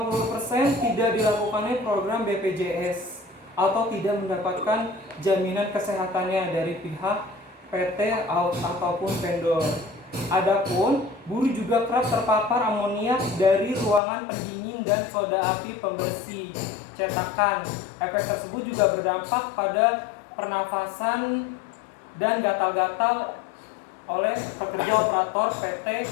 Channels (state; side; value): drops out; right; at 14.0 s